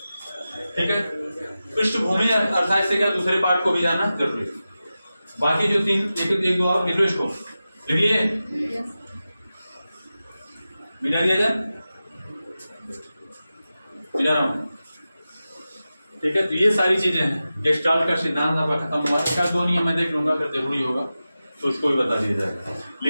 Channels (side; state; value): both; inverted; correlation -0.94